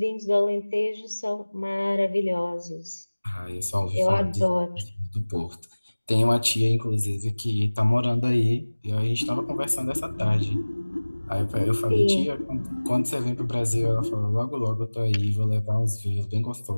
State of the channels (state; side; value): inverted; both; correlation -1.00